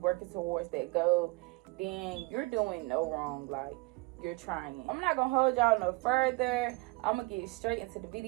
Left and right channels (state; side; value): quieter; left; 24.2 dB